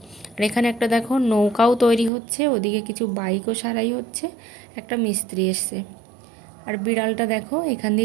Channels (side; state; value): left; drops out; at 2.1 s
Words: আর এখানে একটা দেখো নৌকাও তৈরি হচ্ছে, ওদিকে কিছু বাইকও সারাই হচ্ছে, একটা মিস্ত্রি এসছে। আর বিড়ালটা দেখো, এখান